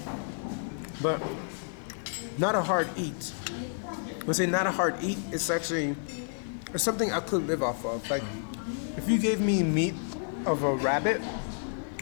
but not a hard eat. When I say not a hard eat, it's something I could live off of. Like, if you gave me meat of a rabbit,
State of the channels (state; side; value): silent; right; digital silence